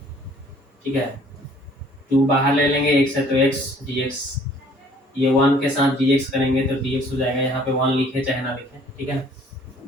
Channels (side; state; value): both; normal; correlation 0.57